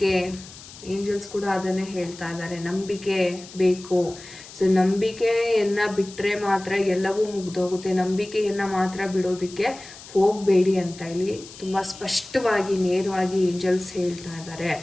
ಏಂಜಲ್ಸ್ ಕೂಡ ಅದನ್ನೇ ಹೇಳ್ತಾ ಇದ್ದಾರೆ, ನಂಬಿಕೆ ಬೇಕು. ಸೊ ನಂಬಿಕೆಯನ್ನು ಬಿಟ್ಟರೆ ಮಾತ್ರ ಎಲ್ಲವೂ ಮುಗ್ದೋಗುತ್ತೆ. ನಂಬಿಕೆಯನ್ನು ಮಾತ್ರ ಬಿಡೋದಕ್ಕೆ ಹೋಗಬೇಡಿ ಅಂತ ಇಲ್ಲಿ ತುಂಬ ಸ್ಪಷ್ಟವಾಗಿ, ನೇರವಾಗಿ ಏಂಜಲ್ಸ್ ಹೇಳ್ತಾ ಇದ್ದಾರೆ.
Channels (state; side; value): noise; left; hiss, 17 dB below the sound